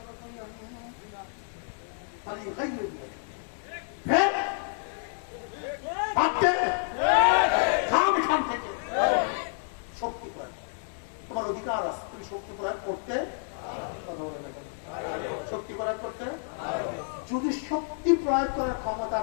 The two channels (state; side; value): silent; right; digital silence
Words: শক্তি প্রয়োগ, তোমার অধিকার আছে, তুমি শক্তি প্রয়োগ করতে, শক্তি প্রয়োগ করতে। যদি শক্তি প্রয়োগ করার ক্ষমতা